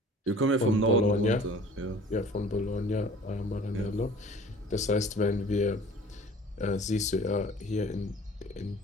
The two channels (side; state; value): both; normal; correlation 0.47